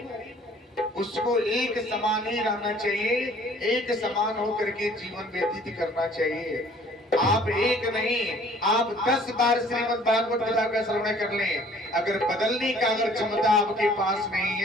उसको एक समान ही रहना चाहिए। एक समान होकर के जीवन व्यतीत करना चाहिए। आप एक नहीं, आप 10 बार श्रीमद् भागवत कथा का श्रवण कर लें, अगर बदलने का अगर क्षमता आपके पास नहीं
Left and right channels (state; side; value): normal; both; correlation 0.55